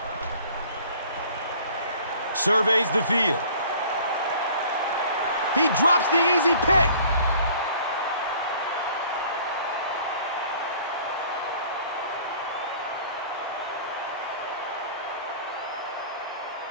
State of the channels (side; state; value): both; inverted; correlation -0.50